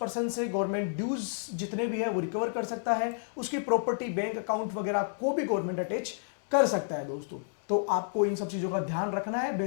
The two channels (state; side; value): silent; right; digital silence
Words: से गवर्नमेंट ड्यूज जितने भी है वो रिकवर कर सकता है। उसकी प्रॉपर्टी, बैंक अकाउंट वगैरह को भी गवर्नमेंट अटैच कर सकता है दोस्तों। तो आपको इन सब चीजों का ध्यान रखना है।